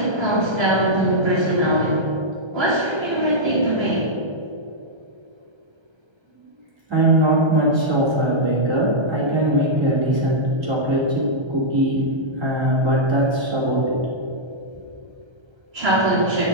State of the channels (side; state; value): left; late; 1.3 ms